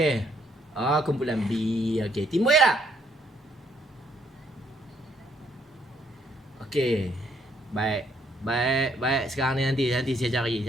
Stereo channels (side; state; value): both; normal; correlation 0.70